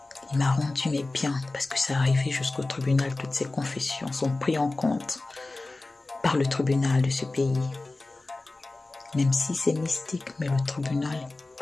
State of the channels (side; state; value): right; quieter; 3.1 dB